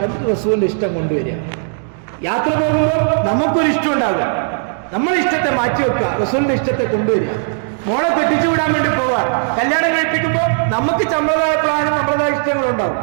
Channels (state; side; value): silent; left; digital silence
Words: എന്നിട്ട് റസൂലിന്റെ ഇഷ്ടം കൊണ്ടുവരിക. യാത്ര പോകുമ്പോൾ നമുക്കൊരു ഇഷ്ടം ഉണ്ടാകുക, നമ്മളെ ഇഷ്ടത്തെ മാറ്റി വെക്കുക, റസൂലിന്റെ ഇഷ്ടത്തെ കൊണ്ടുവരിക. മോളെ കെട്ടിച്ചു വിടാൻ വേണ്ടി പോവാ, കല്യാണം കഴിപ്പിക്കുമ്പോൾ നമുക്ക് നമ്മളതായ പ്ലാനും നമ്മളതായ ഇഷ്ടങ്ങളുണ്ടാവും,